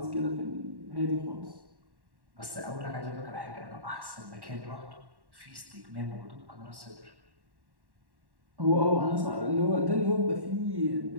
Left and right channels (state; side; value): late; left; 1.1 ms